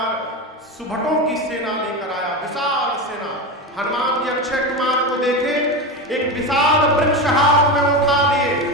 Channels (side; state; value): both; normal; correlation 0.20